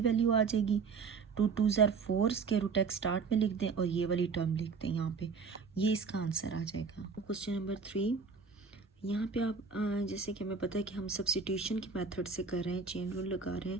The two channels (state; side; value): quieter; left; 5.1 dB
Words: आ जाएगी। 2 2s are 4 square root x start में लिख दें और ये वाली टर्म लिख दें यहाँ पे, ये इसका आंसर आ जाएगा। क्वेश्चन नंबर 3, यहाँ पे आप जैसे कि हमें पता है कि हम सब्स्टिट्यूशन की मेथड से कर रहे हैं, चेन रूल लगा रहे